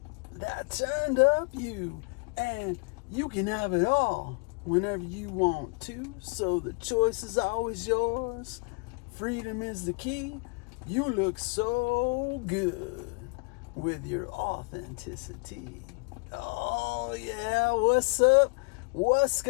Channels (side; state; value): right; quieter; 31.6 dB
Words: That turned up you. And you can have it all whenever you want to. So the choice is always yours. Freedom is the key. You look so good with your authenticity. Oh yeah, what's up? What's